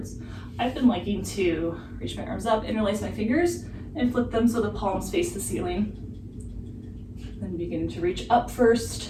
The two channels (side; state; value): both; identical; correlation 1.00